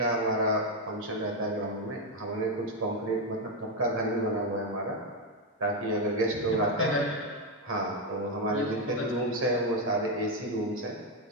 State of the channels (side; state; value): both; normal; correlation 0.05